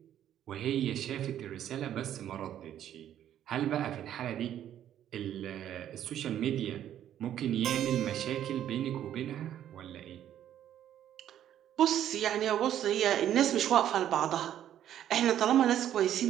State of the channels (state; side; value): quieter; left; 11.0 dB